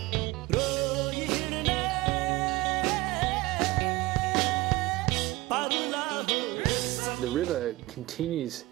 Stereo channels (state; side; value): quieter; left; 20.0 dB